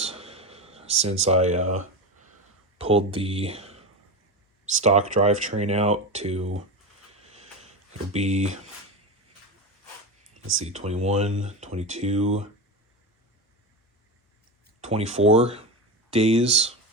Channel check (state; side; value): normal; both; correlation 0.20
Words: since I pulled the stock drivetrain out to, it'll be, let's see, 21, 22, 24 days.